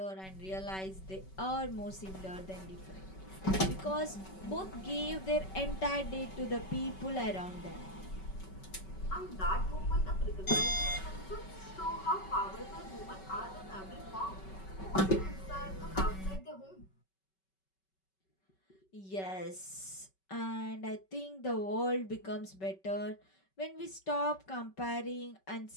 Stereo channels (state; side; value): late; right; 5.3 ms